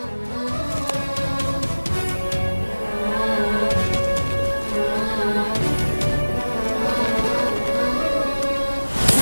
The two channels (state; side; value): inverted; both; correlation -1.00